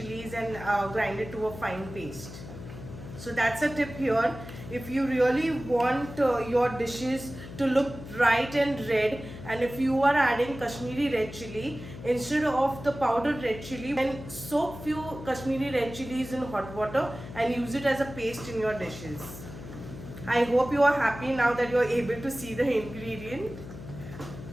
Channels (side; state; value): left; noise; hum, 13 dB below the sound